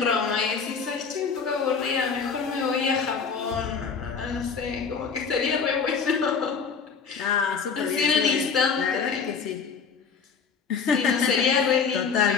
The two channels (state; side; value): quieter; right; 5.8 dB